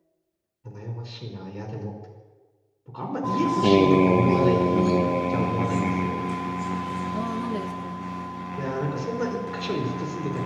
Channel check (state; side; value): identical; both; correlation 1.00